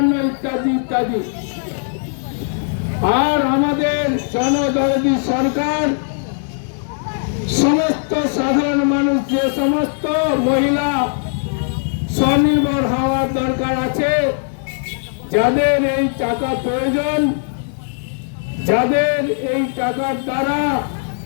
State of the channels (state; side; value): silent; right; digital silence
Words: ইত্যাদি ইত্যাদি। আর আমাদের জনদরদি সরকার সমস্ত সাধারণ মানুষ, যে সমস্ত মহিলা স্বনির্ভর হওয়ার দরকার আছে, যাদের এই টাকা প্রয়োজন, যাদের এই টাকার দ্বারা